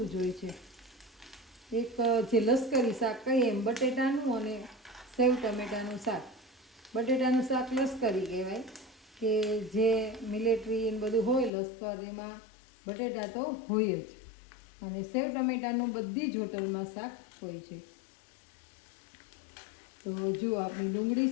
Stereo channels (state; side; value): drops out; right; at 11.5 s